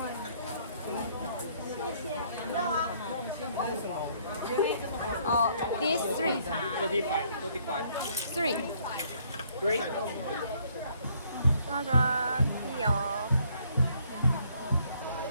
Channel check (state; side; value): inverted; both; correlation -0.66